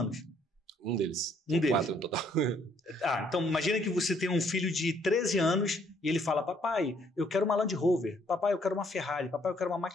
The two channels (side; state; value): both; normal; correlation 0.66